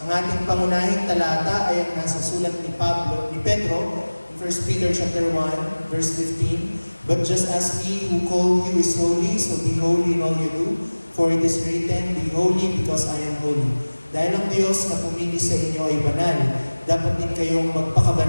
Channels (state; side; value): inverted; both; correlation -1.00